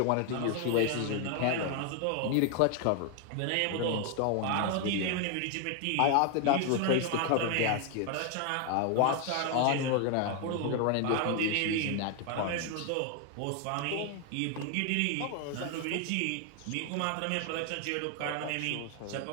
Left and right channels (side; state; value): both; different; correlation 0.01